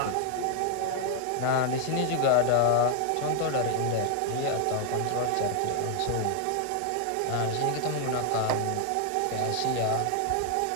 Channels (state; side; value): different; both; correlation 0.00